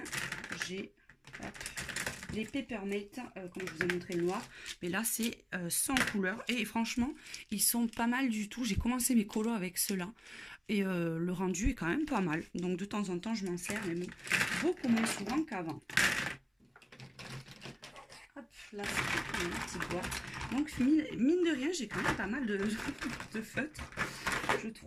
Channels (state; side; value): identical; both; correlation 1.00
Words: j'ai les Peppermint, comme je vous ai montré le noir. Mais là, c'est sans couleur. Et franchement, ils sont pas mal du tout. J'ai commencé mes colos avec ceux-là. Et le rendu est quand même pas mal. Donc de temps en temps, je m'en sers, mais beaucoup moins souvent qu'avant. Hop, là, c'est une petite boîte. Donc, mine de rien, j'ai quand même pas mal de feutres, je